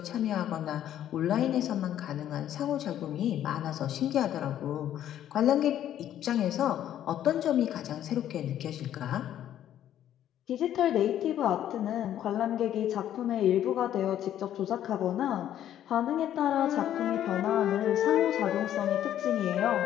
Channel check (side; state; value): right; quieter; 11.2 dB